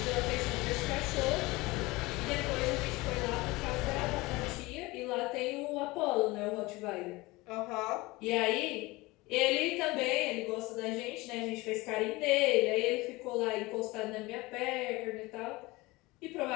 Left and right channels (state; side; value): quieter; right; 21.8 dB